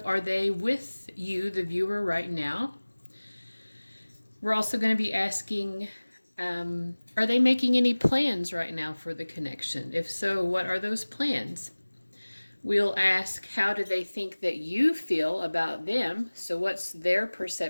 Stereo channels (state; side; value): inverted; both; correlation -1.00